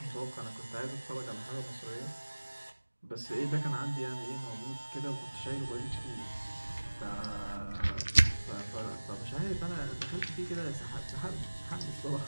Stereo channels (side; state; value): both; inverted; correlation -1.00